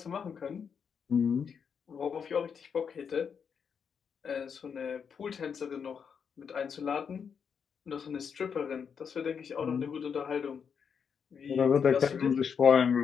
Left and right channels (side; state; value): right; quieter; 6.8 dB